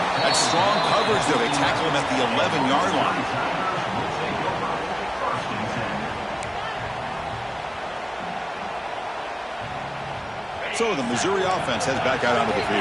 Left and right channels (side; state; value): both; identical; correlation 1.00